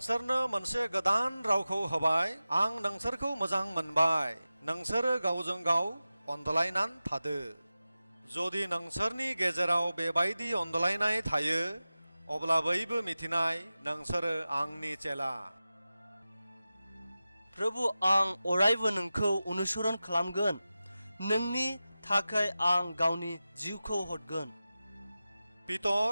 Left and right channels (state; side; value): inverted; both; correlation -0.95